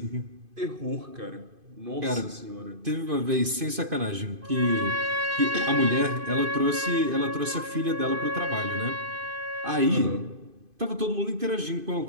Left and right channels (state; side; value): late; left; 2.5 ms